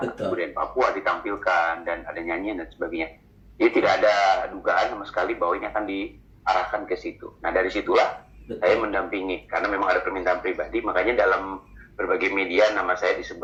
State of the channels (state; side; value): identical; both; correlation 1.00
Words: kebudayaan Papua ditampilkan dan ada nyanyian dan sebagainya. Jadi tidak ada dugaan sama sekali bahwa ini akan diarahkan ke situ. Nah, dari situlah saya mendampingi, karena memang ada permintaan pribadi, makanya dalam berbagai media nama saya